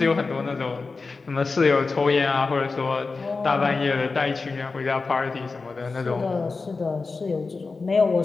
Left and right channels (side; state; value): right; quieter; 4.1 dB